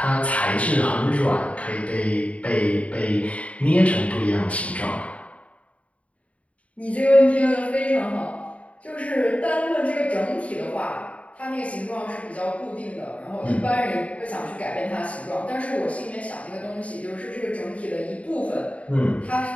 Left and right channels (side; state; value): right; late; 0.065 ms